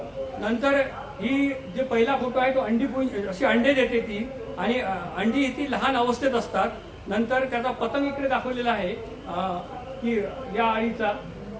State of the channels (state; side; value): identical; both; correlation 1.00